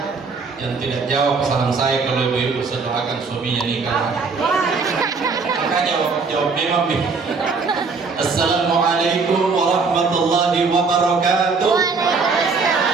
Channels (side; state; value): left; quieter; 4.6 dB